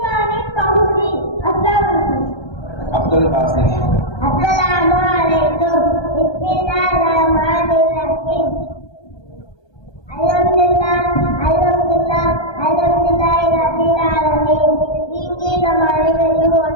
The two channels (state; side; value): late; right; 1.2 ms